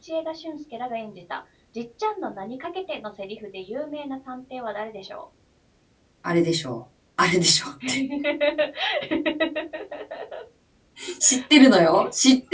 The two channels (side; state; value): both; identical; correlation 1.00